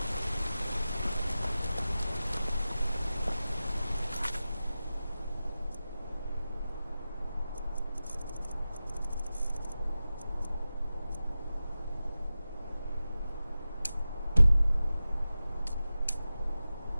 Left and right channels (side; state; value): both; inverted; correlation -0.94